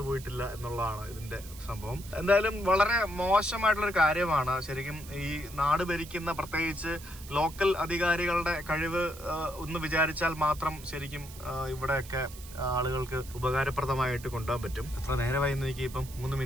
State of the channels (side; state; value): right; noise; hiss, 17 dB below the sound